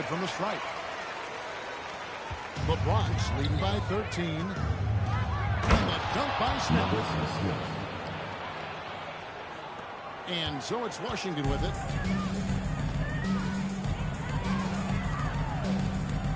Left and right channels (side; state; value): both; identical; correlation 1.00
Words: from the strike. The Bronx leading by 13. And the dunk by Smith. And so it's Washington with it.